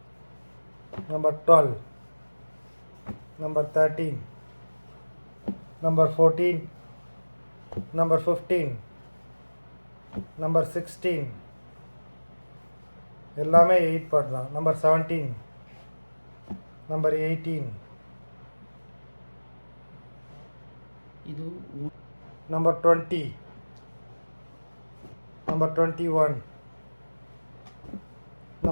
number 12, number 13, number 14, number 15, number 16. எல்லாமே 8 பார்ட் தான். நம்பர் 17, நம்பர் 18, இது நம்பர் 20, நம்பர் 21,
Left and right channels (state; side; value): inverted; both; correlation -1.00